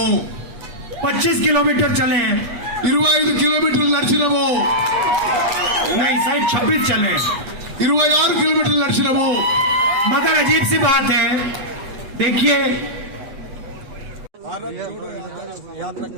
25 किलोमीटर चले हैं। 25 కిలోమీటర్లు నడిచినాము। नहीं शायद 26 चले हैं। 26 కిలోమీటర్లు నడిచినాము। मगर अजीब सी बात है, देखिए భారత్ జోడో యాత్ర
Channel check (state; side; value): late; left; 8.2 ms